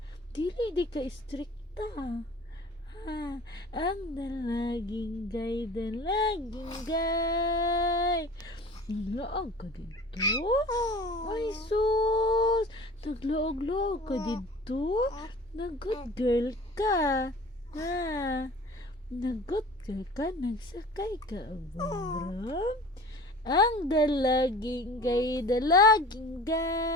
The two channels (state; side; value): normal; both; correlation 0.42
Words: Dili di ka istrikta. Ang dalaging gay, dalaging gay. Naglaag ka dito? Ay sus! Naglaag-laag ka dito? Nag-good girl ka. Nag-good girl ka? Nagsakay ka og bumbrong? Ang dalaging gay, dalaging